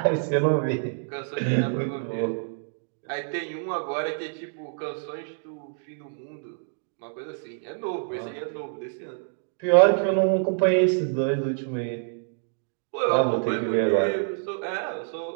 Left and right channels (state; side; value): silent; left; digital silence